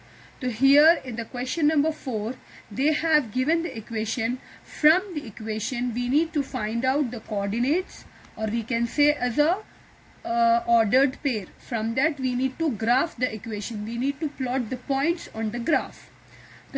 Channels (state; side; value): identical; both; correlation 1.00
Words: So here in the question number 4, they have given the equation. From the equation we need to find out the coordinates, or we can say as a ordered pair. From that we need to graph the equation. We need to plot the points on the graph.